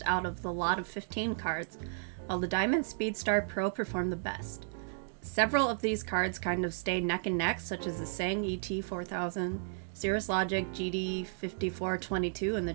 out of the lot of 15 cards, while the Diamond Speedstar Pro performed the best. Several of these cards kind of stayed neck and neck, such as the Sang ET4000, Cirrus Logic GD5422, and the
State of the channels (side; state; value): left; silent; digital silence